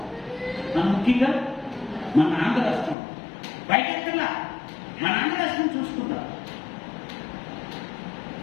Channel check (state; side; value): drops out; right; at 3.0 s